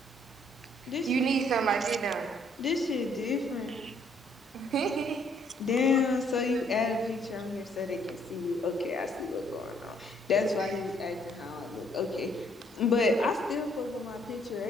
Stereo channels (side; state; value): both; normal; correlation 0.66